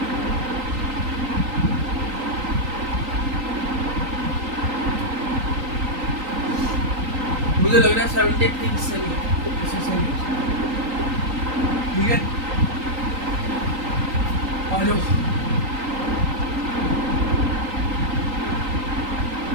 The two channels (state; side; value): late; left; 3.9 ms